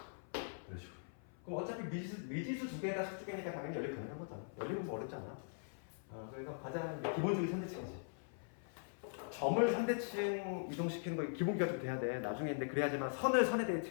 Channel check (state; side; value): silent; right; 50 dB below the other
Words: 이런 식으로. 그럼 어차피 미지수 두 개에다 식두 개니까 당연히 연립 가능한 거잖아. 연립은 뭐 어렵지 않아. 그래서 가장 기본적인 선대칭이지. 점을 선대칭 이동시키는 거 기본기가 좀 돼야 돼. 나중에 근데 그래야지만 선을 선의